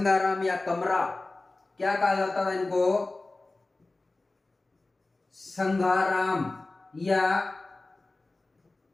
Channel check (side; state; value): right; quieter; 3.1 dB